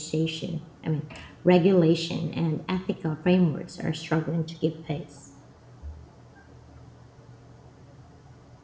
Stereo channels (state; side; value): identical; both; correlation 1.00